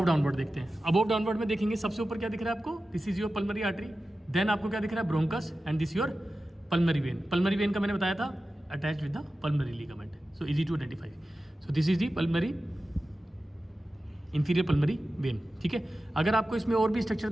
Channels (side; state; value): both; normal; correlation 0.94